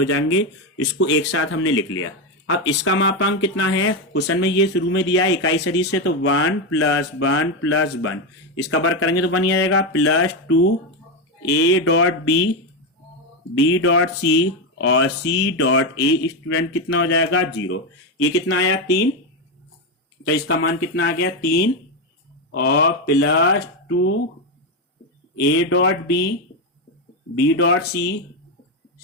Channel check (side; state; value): both; normal; correlation 0.10